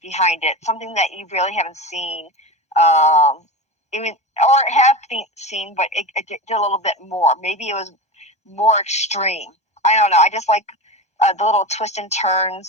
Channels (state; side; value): late; right; 1.3 ms